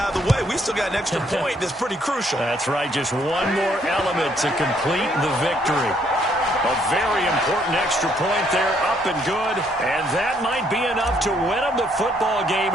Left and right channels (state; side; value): normal; both; correlation 0.69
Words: of the way. We still got an extra point that's pretty crucial. That's right, just one more element to complete the victory. A very important extra point there, up and good. And that might be enough to win them the football